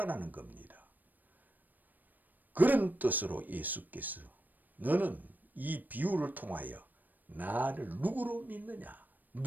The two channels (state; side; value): late; left; 0.087 ms